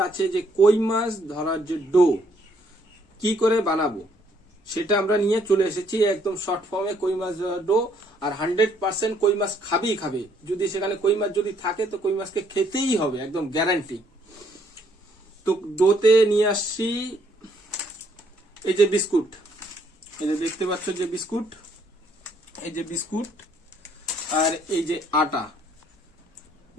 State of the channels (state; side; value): normal; both; correlation 0.67